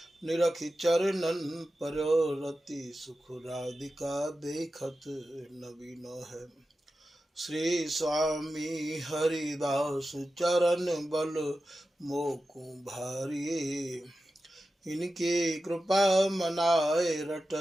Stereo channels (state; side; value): normal; both; correlation 0.93